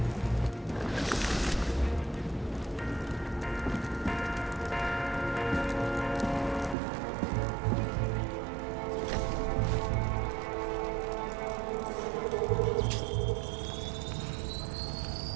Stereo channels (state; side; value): drops out; left; at 6.8 s